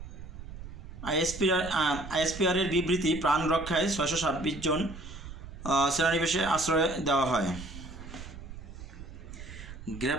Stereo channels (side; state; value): right; noise; rumble, 12 dB below the sound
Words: আইএসপিআরের বিবৃতি, প্রাণ রক্ষায় 626 জন সেনানিবাসে আশ্রয় দেওয়া হয়।